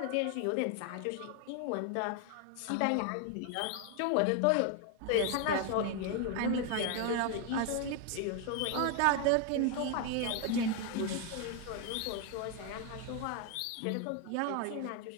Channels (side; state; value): both; different; correlation 0.01